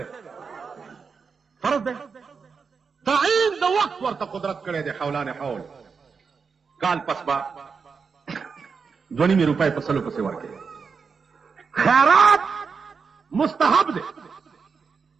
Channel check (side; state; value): left; quieter; 5.4 dB